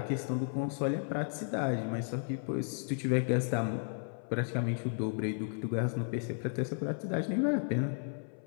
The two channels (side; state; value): right; silent; 55 dB below the other